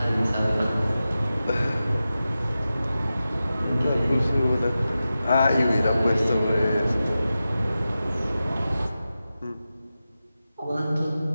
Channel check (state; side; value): inverted; both; correlation -0.93